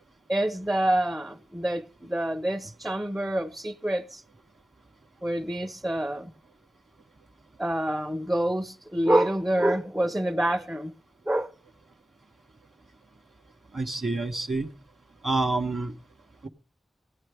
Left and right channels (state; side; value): normal; both; correlation 0.95